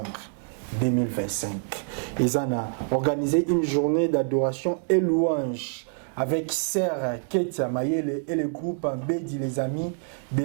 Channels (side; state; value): left; silent; 61 dB below the other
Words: 2025. Ils ont organisé une journée d'adoration et louange avec Sœur Ketia Mayele et le groupe Bédi les Amis de